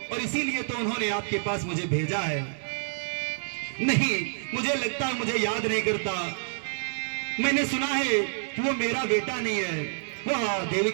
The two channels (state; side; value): silent; left; 58 dB below the other